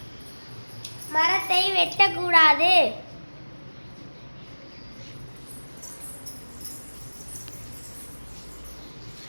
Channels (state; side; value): inverted; both; correlation -1.00